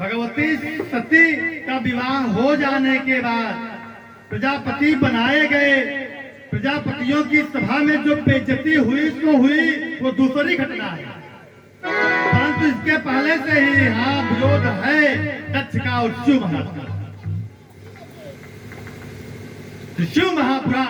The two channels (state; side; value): identical; both; correlation 1.00